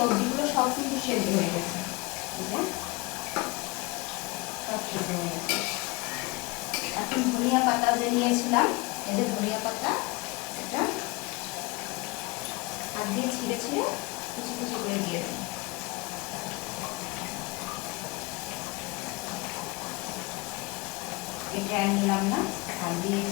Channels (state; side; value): quieter; right; 24.6 dB